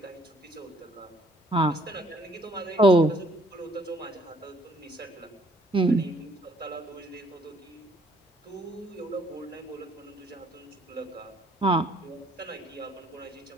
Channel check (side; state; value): both; normal; correlation 0.63